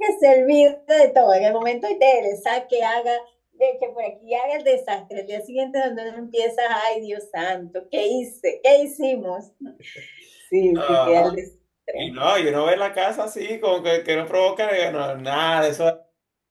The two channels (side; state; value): both; identical; correlation 1.00